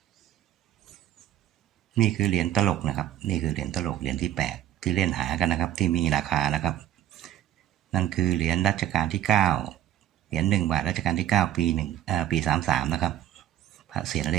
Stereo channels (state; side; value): quieter; left; 12.0 dB